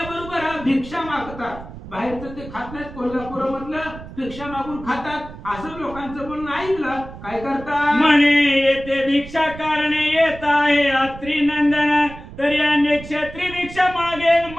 भिक्षा मागतात. बाहेरचं ते खात नाहीत, कोल्हापूरमधलं भिक्षा मागून खातात. असं लोकांचं बोलणं ऐकलं. काय करतात म्हणे येथे भिक्षा कारणे येत आहे अत्रिनंदन. तरी अन्य क्षेत्री भिक्षा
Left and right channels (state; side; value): noise; right; rumble, 14 dB below the sound